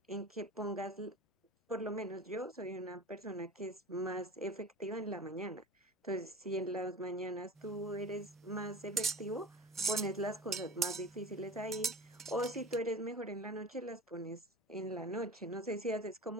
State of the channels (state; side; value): normal; both; correlation 0.37